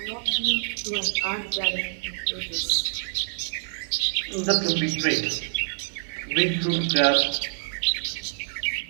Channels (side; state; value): left; silent; 61 dB below the other